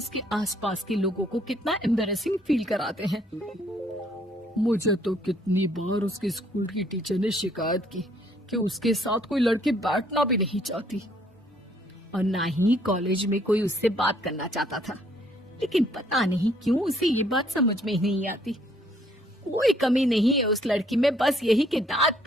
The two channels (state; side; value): normal; both; correlation 0.65